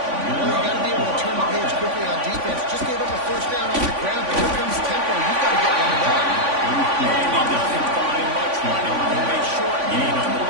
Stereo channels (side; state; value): left; late; 3.5 ms